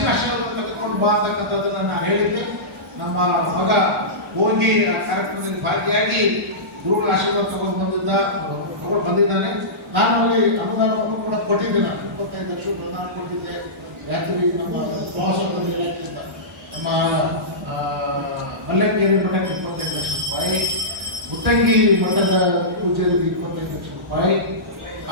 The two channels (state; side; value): normal; both; correlation -0.18